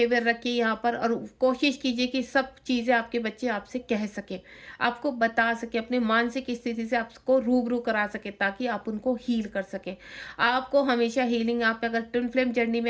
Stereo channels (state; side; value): identical; both; correlation 1.00